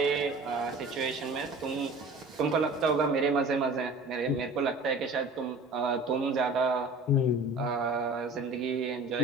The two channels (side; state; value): both; normal; correlation 0.43